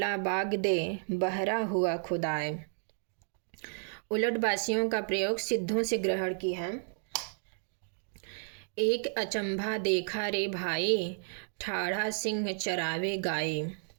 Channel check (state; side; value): silent; left; digital silence